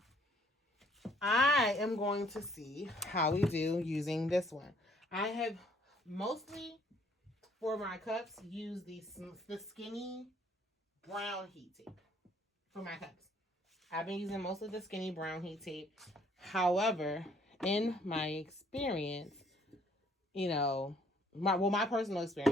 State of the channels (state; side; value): normal; both; correlation 0.62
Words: I am going to see how we do using this one. I have mostly, for my cups, used the skinny brown heat tape for my cups. I've been using mostly the skinny brown heat tape. However, in my experience, my personal